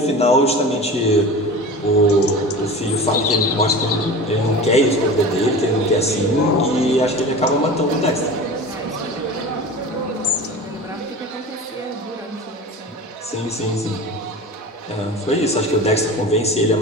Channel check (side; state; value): both; normal; correlation 0.34